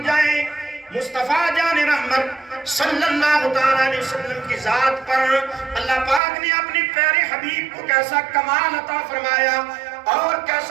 جائیں مصطفیٰ جان رحمت صلی اللہ علیہ وسلم کی ذات پر اللہ پاک نے اپنے پیارے حبیب کو کیسا کمال عطا فرمایا اور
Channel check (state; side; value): drops out; left; at 6.2 s